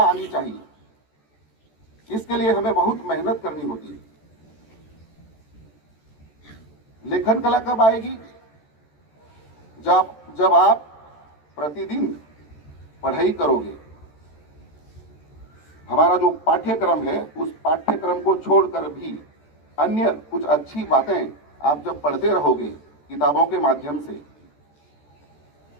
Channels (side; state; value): right; late; 14 ms